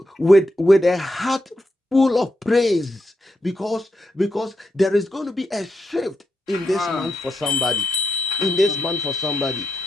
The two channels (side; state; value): both; normal; correlation 0.84